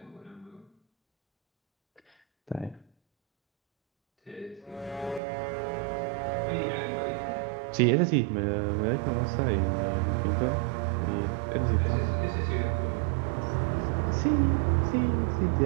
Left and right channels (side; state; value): left; drops out; at 5.2 s